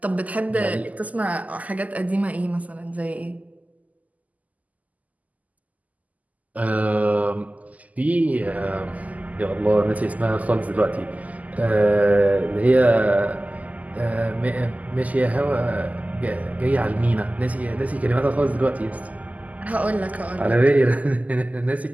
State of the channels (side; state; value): left; late; 0.076 ms